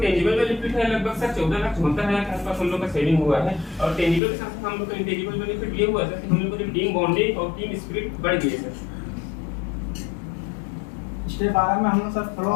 टेंजिबल बेनिफिट है लगभग सर 14,74,000 के आसपास हम लोग का सेविंग हुआ है। और टेंजिबल के साथ हम लोग का इंटेंजिबल बेनिफिट ये हुआ सर कि हम लोग को टीम बॉन्डिंग और टीम स्पिरिट बढ़ गई है सर। स्टेप 12 में हम लोग सर फ्लो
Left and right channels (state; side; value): drops out; right; at 4.2 s